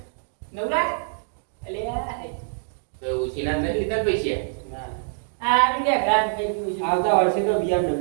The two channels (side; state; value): left; silent; digital silence